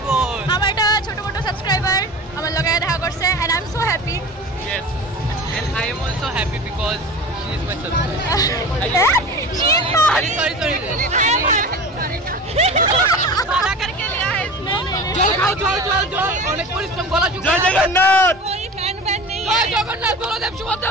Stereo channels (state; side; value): normal; both; correlation 0.34